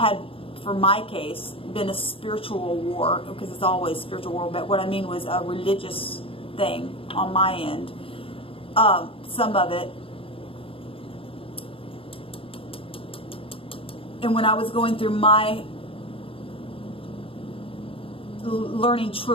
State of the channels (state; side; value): late; right; 0.27 ms